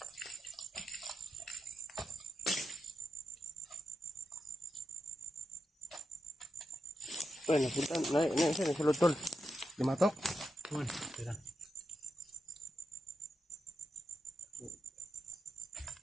Ay, napunta. Sa lutol. Limatok. Tira.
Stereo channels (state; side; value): normal; both; correlation 0.87